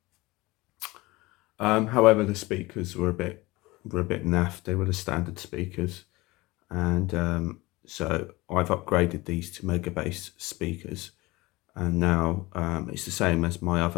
However, the speakers were a bit naff. They were the standard speakers, and so I've upgraded these to mega bass speakers, and now it's the same as my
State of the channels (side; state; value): right; quieter; 21.4 dB